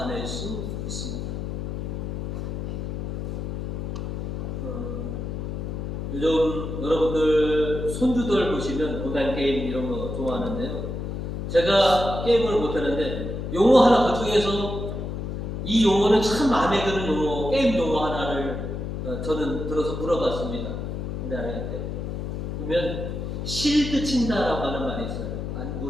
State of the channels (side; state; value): left; noise; hum, 4 dB below the sound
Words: 수 있습니다. 요즘 여러분들 손주들 보시면 온라인 게임 이런 거 좋아하는데요. 제가 게임을 못하는데 용어 하나 그중에서 이 용어는 참 마음에 드는 용어, 게임 용어 하나를 저는 들어서 물어봤습니다. 우리 아이한테. 그러면 실드 친다라고 하는 말이 있어요. 안